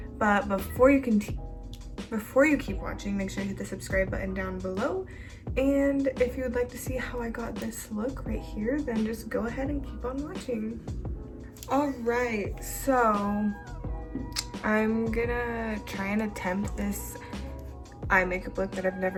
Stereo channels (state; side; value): identical; both; correlation 1.00